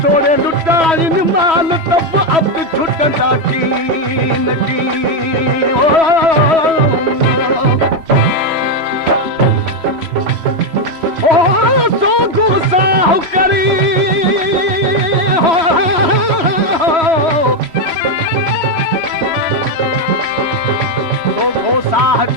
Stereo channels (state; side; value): late; left; 3.0 ms